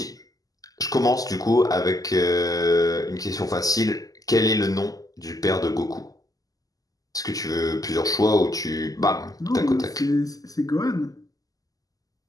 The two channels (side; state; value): right; late; 0.17 ms